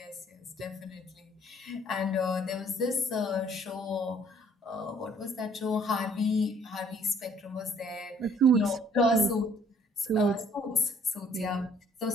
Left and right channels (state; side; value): normal; both; correlation 0.59